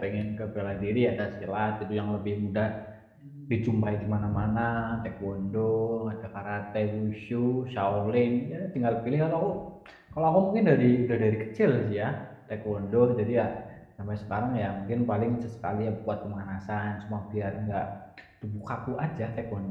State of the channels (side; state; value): both; identical; correlation 1.00